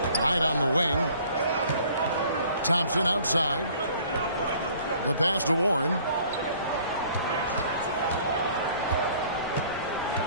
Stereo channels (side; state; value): both; inverted; correlation -0.55